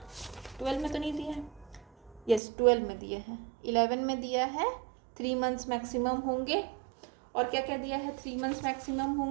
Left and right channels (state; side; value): drops out; left; at 2.4 s